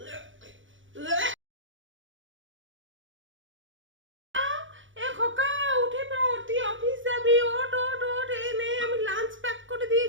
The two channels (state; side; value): late; left; 0.56 ms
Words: এ খোকা, উঠে পড়, তুই অফিস যাবি, ওঠ ওঠ ওঠ। এই নে, আমি লাঞ্চ প্যাক করে